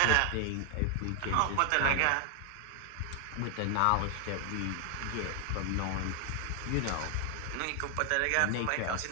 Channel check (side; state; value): both; different; correlation 0.00